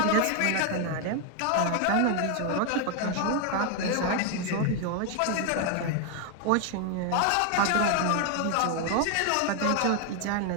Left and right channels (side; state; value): both; different; correlation 0.01